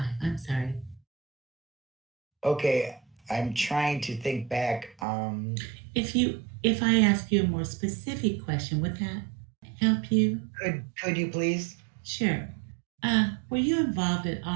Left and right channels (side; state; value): left; drops out; at 5.1 s